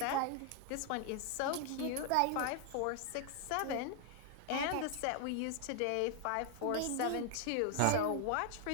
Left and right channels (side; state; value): both; different; correlation 0.00